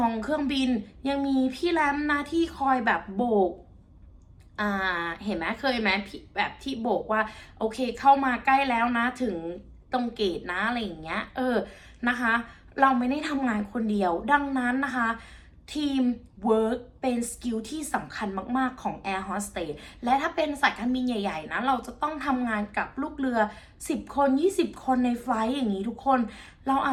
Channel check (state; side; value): identical; both; correlation 1.00